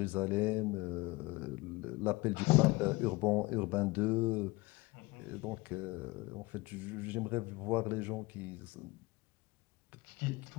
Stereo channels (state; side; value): quieter; right; 22.4 dB